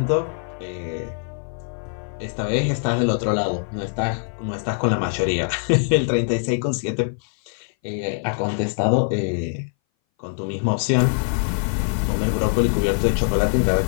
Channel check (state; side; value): silent; right; 60 dB below the other